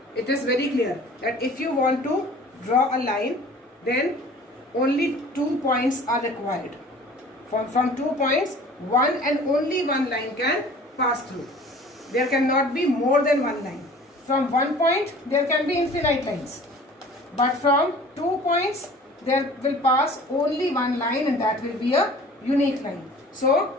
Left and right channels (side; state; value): both; normal; correlation 0.46